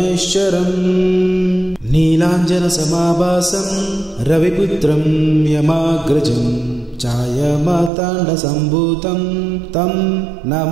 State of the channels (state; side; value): drops out; left; at 7.9 s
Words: నీలాంజనసమాభాసం రవిపుత్రం యమాగ్రజం ఛాయమార్తాండసంభూతం తం